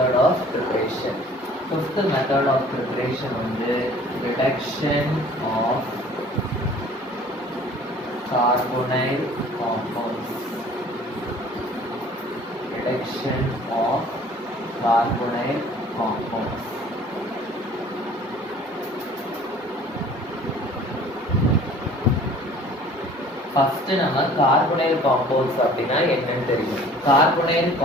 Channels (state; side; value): normal; both; correlation 0.50